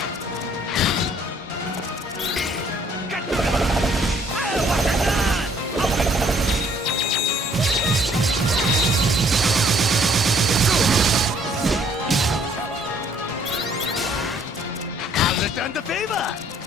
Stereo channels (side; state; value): both; normal; correlation 0.62